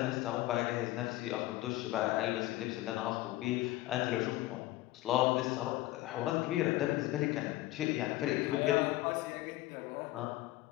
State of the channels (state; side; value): quieter; right; 17.3 dB